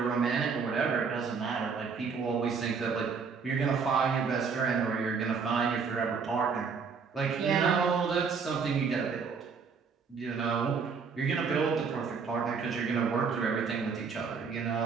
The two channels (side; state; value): left; quieter; 5.6 dB